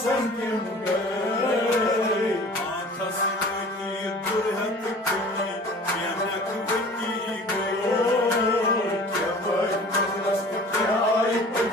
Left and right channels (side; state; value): both; normal; correlation 0.45